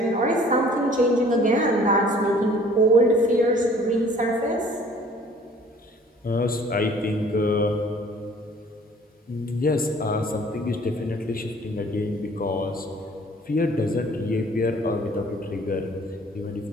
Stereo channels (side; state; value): both; normal; correlation 0.53